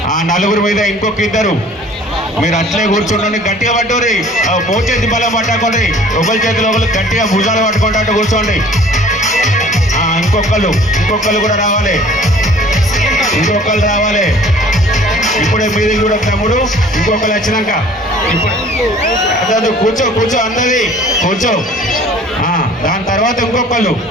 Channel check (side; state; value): both; normal; correlation 0.51